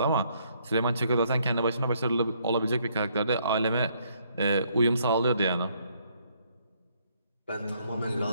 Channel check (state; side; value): inverted; both; correlation -0.69